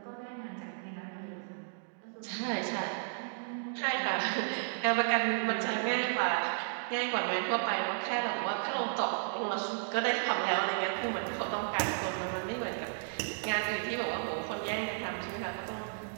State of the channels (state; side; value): silent; left; digital silence